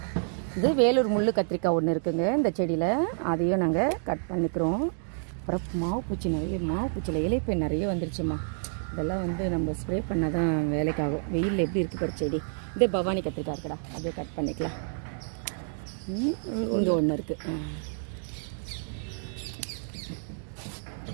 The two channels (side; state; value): left; silent; digital silence